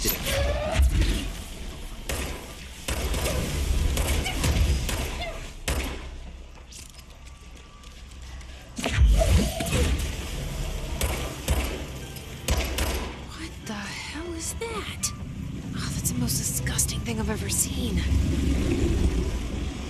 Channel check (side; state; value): both; identical; correlation 1.00